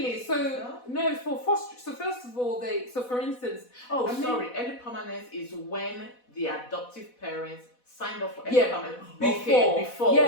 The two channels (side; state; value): right; late; 4.1 ms